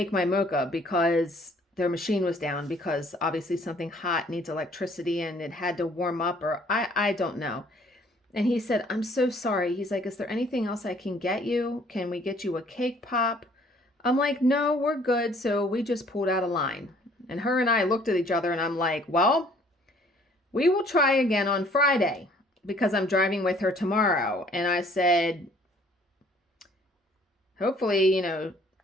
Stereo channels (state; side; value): normal; both; correlation 0.58